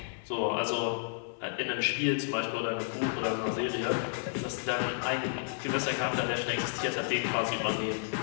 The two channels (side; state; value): right; silent; digital silence